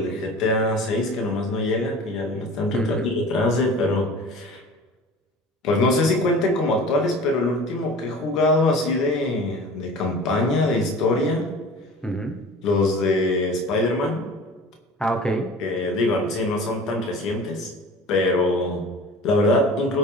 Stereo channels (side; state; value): both; normal; correlation 0.40